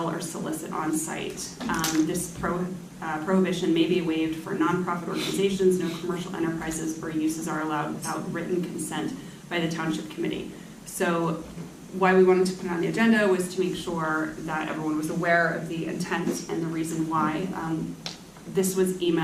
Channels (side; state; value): both; identical; correlation 1.00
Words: or solicit on site. This prohibition may be waived for nonprofit organizations. No commercial enterprises or uses are allowed without written consent by the Township Committee. So why we wanted to put it on the agenda was to make sure that everyone was aware of the intent and the reason why. This was